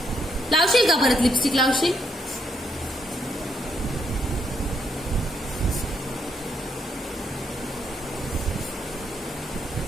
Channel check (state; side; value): normal; both; correlation 0.76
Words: लावशील का परत लिपस्टिक? लावशील?